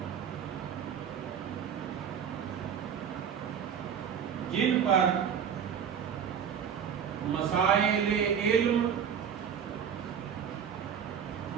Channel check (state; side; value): quieter; left; 8.0 dB